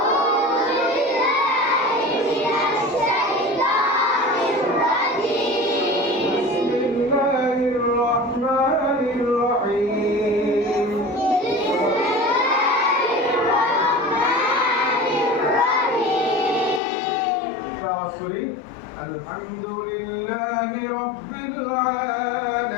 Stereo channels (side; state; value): right; drops out; at 16.8 s